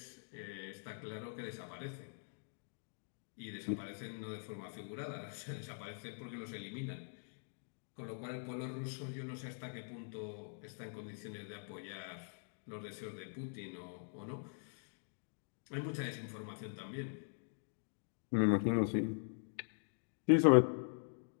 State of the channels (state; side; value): silent; right; digital silence